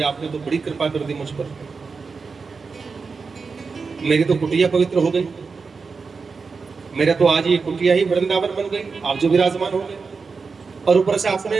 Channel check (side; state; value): left; quieter; 4.8 dB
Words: आपने तो बड़ी कृपा कर दी मुझ पर, मेरी तो कुटिया पवित्र हो गई, मेरा तो आज ये कुटिया ही वृंदावन बन गई, आप जो विराजमान हो गए, और ऊपर से